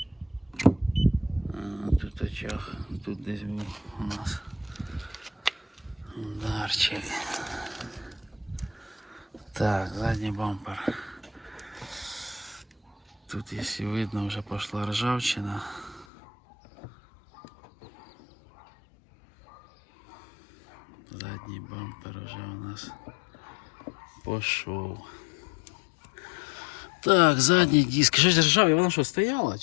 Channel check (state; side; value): drops out; right; at 16.1 s